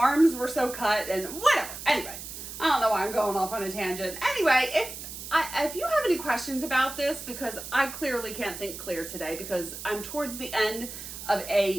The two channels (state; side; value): noise; right; hiss, 10 dB below the sound